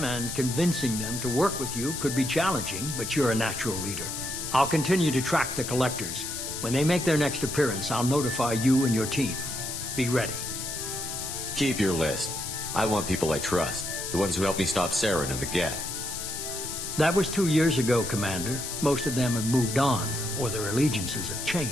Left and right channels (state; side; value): noise; left; hiss, 5 dB below the sound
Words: and convincing them to work with you could be challenging, but you're a natural leader. I'll continue to track the Collectors. When they make their next appearance, I'll notify you and your team. Be ready. Keep your list. I want people I trust. The ones who helped me stop Saren and the Geth. That was 2 years ago, Commander. Most of them have moved on, or their allegiances have